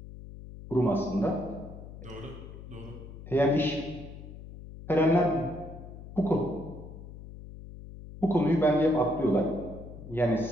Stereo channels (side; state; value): left; noise; hum, 14 dB below the sound